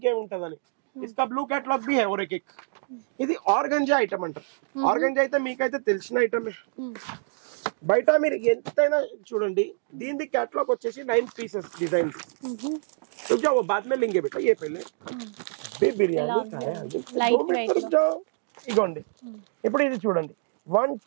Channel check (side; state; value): left; silent; digital silence